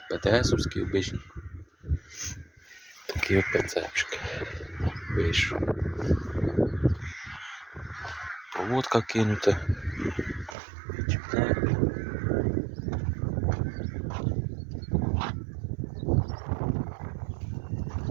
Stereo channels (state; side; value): drops out; left; at 10.6 s